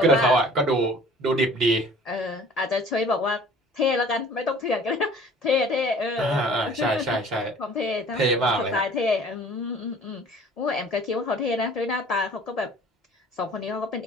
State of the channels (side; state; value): both; normal; correlation 0.49